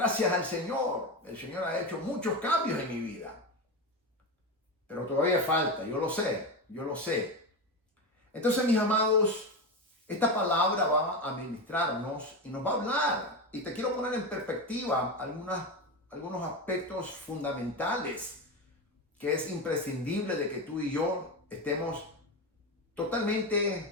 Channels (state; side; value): normal; both; correlation 0.18